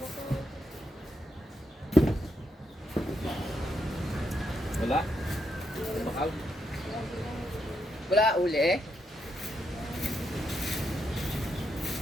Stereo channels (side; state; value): both; normal; correlation 0.80